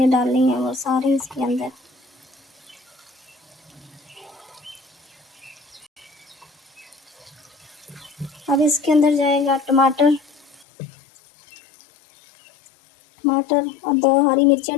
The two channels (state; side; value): drops out; right; at 10.7 s